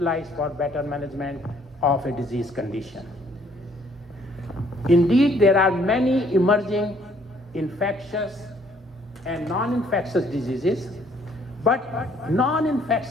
for better management of a disease condition. Indeed, there are many emerging infectious and non-infectious diseases, but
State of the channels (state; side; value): normal; both; correlation 0.63